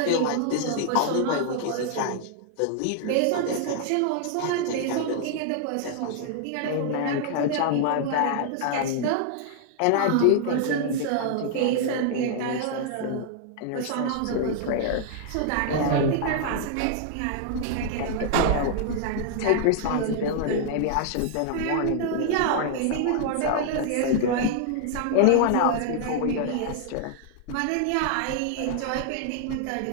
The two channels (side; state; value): both; different; correlation -0.01